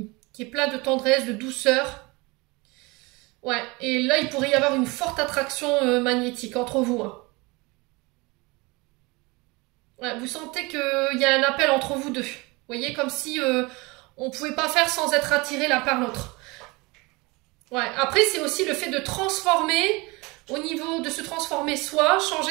est plein de tendresse, de douceur. Ouais, et là, il pourrait y avoir une forte attraction magnétique entre vous. Hein. Ouais, vous sentez qu'il y a un appel entre vous deux. Vous voyez, comme si on ne pouvait pas faire sans être attiré l'un par l'autre. Ouais, après, c'est aussi le fait de transformer, au niveau de se transformer soi,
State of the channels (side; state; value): left; quieter; 25.1 dB